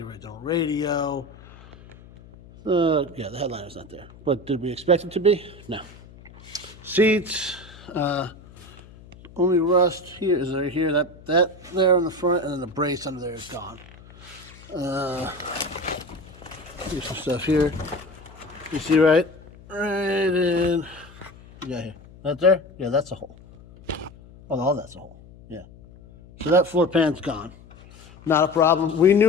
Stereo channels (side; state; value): left; noise; hum, 21 dB below the sound